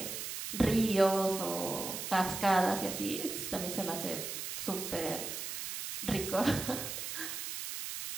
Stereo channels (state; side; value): noise; right; hiss, 5 dB below the sound